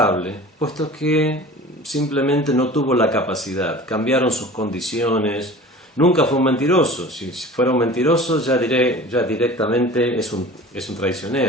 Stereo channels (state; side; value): normal; both; correlation 0.40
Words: puesto que simplemente no tuvo la capacidad, cambiaron sus condiciones, nunca fue un mentiroso. Si fuera un mentiroso ya directamente es un